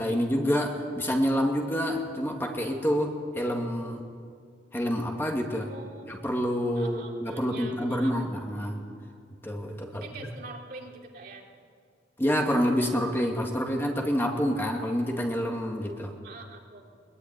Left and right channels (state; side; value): normal; both; correlation 0.83